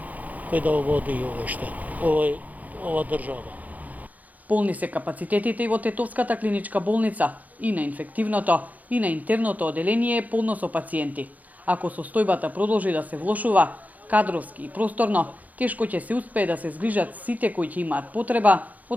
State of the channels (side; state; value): left; late; 0.078 ms